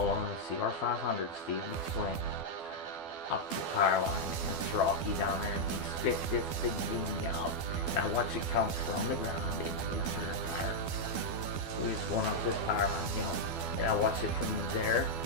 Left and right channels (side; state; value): right; late; 12 ms